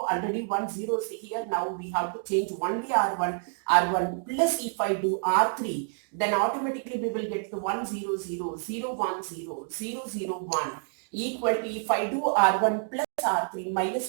1 0 is here. Now we have to change only R1 plus if I do R3, then automatically we will get the 1 0 0 0 1 0 0 0 1 equal to, if I do R1 plus R3,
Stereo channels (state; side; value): silent; left; 59 dB below the other